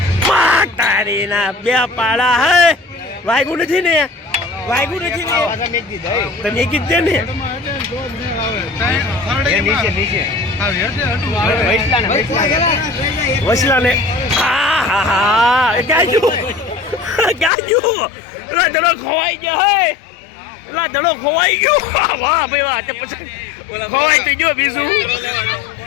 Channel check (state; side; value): drops out; right; at 17.5 s